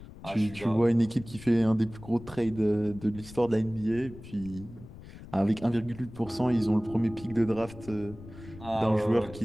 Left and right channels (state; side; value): noise; left; rumble, 16 dB below the sound